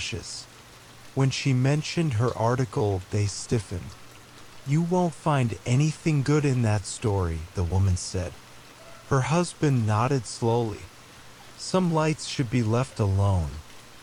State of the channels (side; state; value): both; identical; correlation 1.00